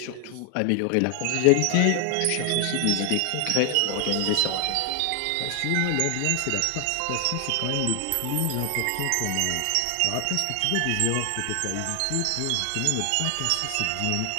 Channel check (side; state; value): both; different; correlation 0.00